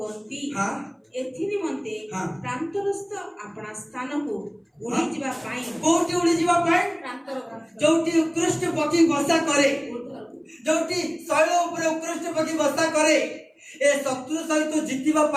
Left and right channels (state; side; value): identical; both; correlation 1.00